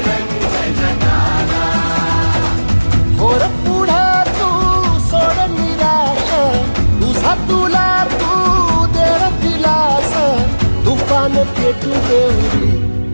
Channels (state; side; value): inverted; both; correlation -1.00